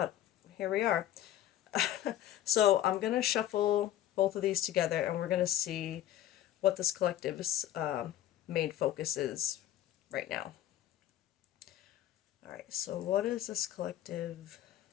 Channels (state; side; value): quieter; right; 12.3 dB